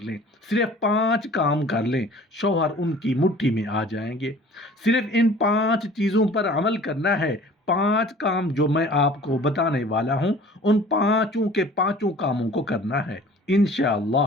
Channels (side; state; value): both; normal; correlation 0.47